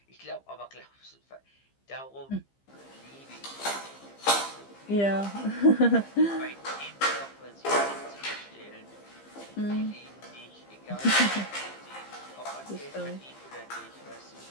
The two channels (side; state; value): right; late; 15 ms